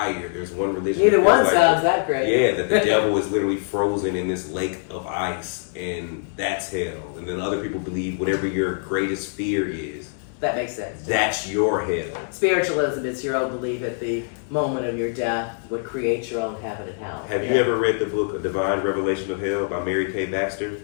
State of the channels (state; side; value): silent; right; 63 dB below the other